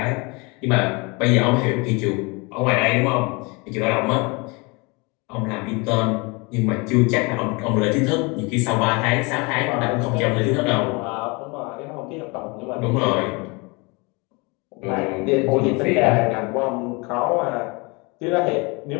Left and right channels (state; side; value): quieter; right; 28.4 dB